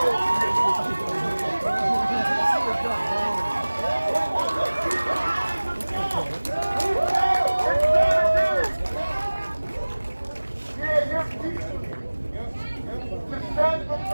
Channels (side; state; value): both; inverted; correlation -1.00